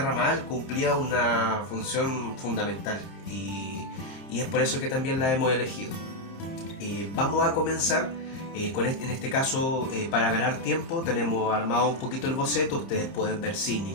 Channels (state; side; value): late; right; 31 ms